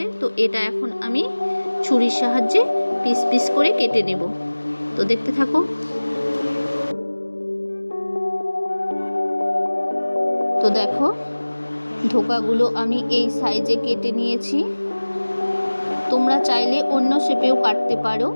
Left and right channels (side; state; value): both; inverted; correlation -1.00